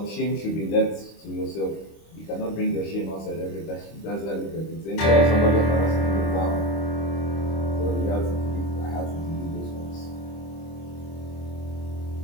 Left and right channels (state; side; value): late; right; 25 ms